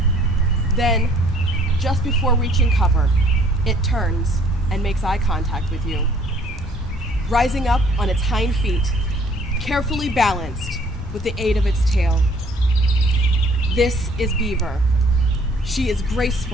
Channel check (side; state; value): both; normal; correlation 0.58